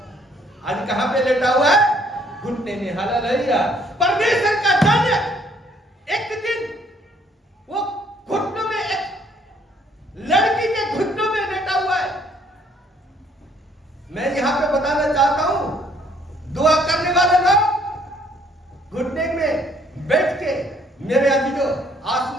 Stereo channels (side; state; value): both; normal; correlation 0.63